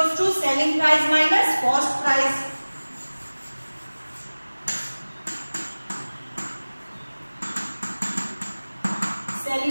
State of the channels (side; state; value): both; inverted; correlation -1.00